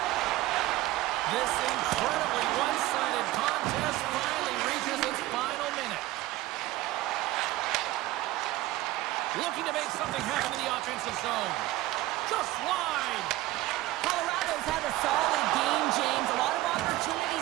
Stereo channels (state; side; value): quieter; left; 16.9 dB